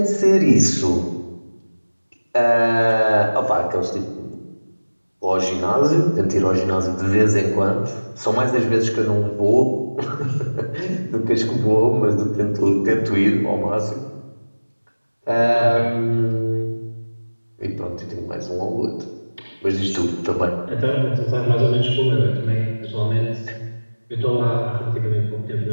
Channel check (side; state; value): both; inverted; correlation -1.00